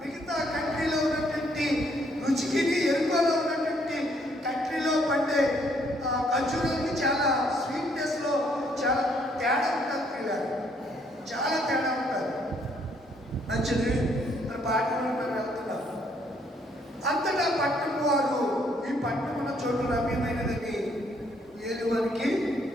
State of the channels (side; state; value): both; normal; correlation 0.68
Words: కంట్రీలో ఉన్నటువంటి రుచికి యెరికోలో ఉన్నటువంటి కంట్రీలో పండే ఖర్జూరాలకి చాలా స్వీట్నెస్లో చాలా తేడా ఉంటుంది పిల్లలు. చాలా తేడా ఉంటుంది. మంచిది. మన పాఠంలో మనం వెళ్తున్నాం. అంతటా పట్టణం వారు, ఈ పట్టణం ఉన్న చోటు రమ్యమైనదని ఏలువనికి